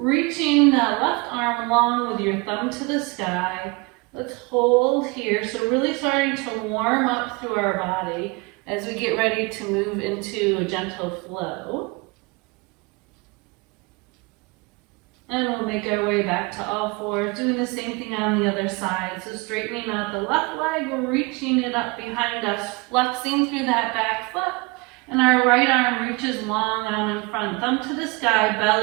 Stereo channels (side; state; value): left; quieter; 27.1 dB